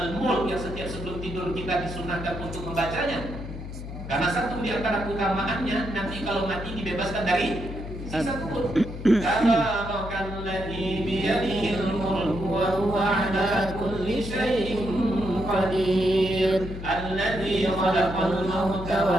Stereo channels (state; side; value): noise; left; hum, 9 dB below the sound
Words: yang setiap sebelum tidur kita disunahkan untuk membacanya. Karena satu di antara keutamaannya, nanti kalau mati dibebaskan dari sisa kubur. Tabarakalladzi biyadihil mulku wa huwa ala kulli syai'in qadir. Alladzi khalaqal mauta